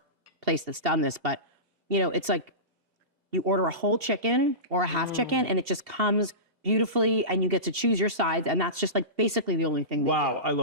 place that's done this, but it's like you order a whole chicken or a half chicken and it just comes beautifully and you get to choose your sides. And that's just basically the only thing. Wow, I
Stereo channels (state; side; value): late; left; 2.7 ms